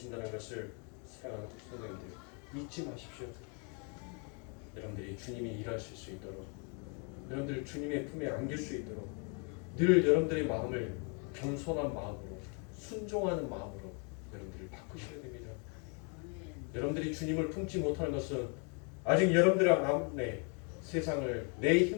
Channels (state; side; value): quieter; right; 37.0 dB